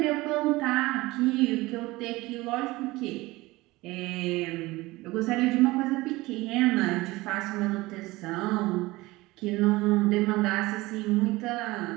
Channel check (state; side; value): quieter; left; 20.4 dB